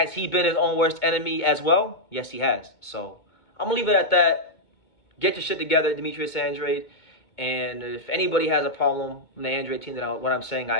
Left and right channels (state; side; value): late; right; 2.2 ms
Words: he been his own worst enemy as well? Yes, he has. So I'm gonna leave it at that. Get your shit together, Demetrius Andrade. And if anybody has a problem with the Andrade team, what I'm saying,